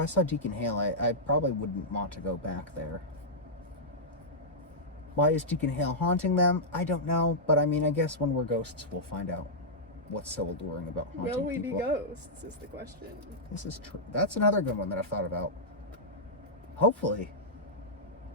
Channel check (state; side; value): normal; both; correlation -0.10